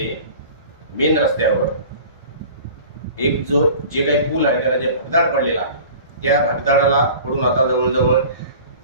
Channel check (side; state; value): both; inverted; correlation -0.42